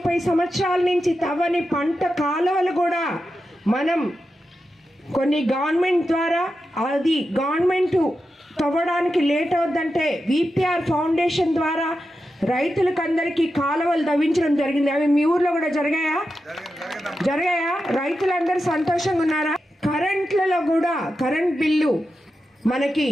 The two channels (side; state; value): both; normal; correlation 0.90